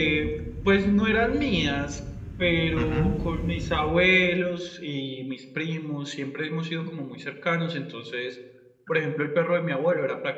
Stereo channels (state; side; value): identical; both; correlation 1.00